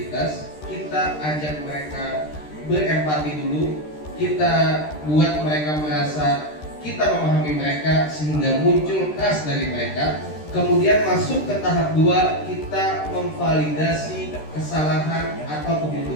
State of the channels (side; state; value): right; late; 13 ms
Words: Kita ajak mereka berempati dulu. Kita buat mereka merasa kita memahami mereka sehingga muncul trust dari mereka. Kemudian masuk ke tahap 2, kita memvalidasi kesalahan atau